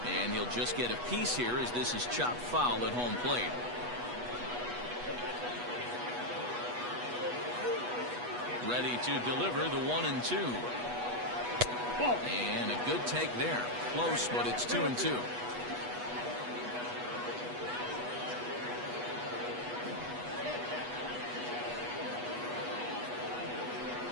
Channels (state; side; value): late; left; 8.2 ms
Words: And he'll just get a piece here as this is chopped foul at home plate. Ready to deliver the 1-2. And a good take there. Close, but it's 2-2.